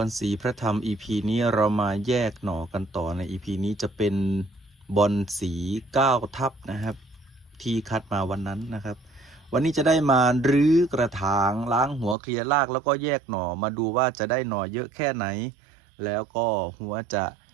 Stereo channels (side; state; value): left; drops out; at 12.2 s